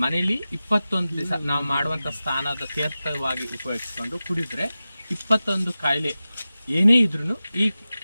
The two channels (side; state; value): both; inverted; correlation -0.95